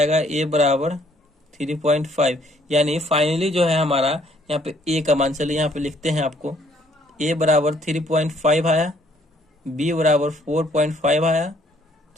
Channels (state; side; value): normal; both; correlation 0.64